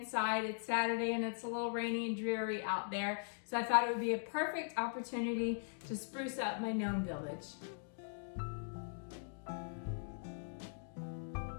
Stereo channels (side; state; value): right; silent; digital silence